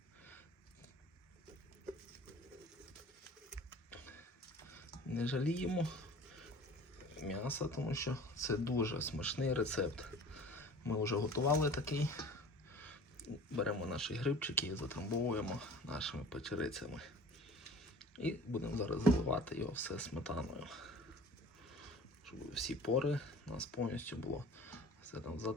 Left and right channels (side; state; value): both; normal; correlation 0.43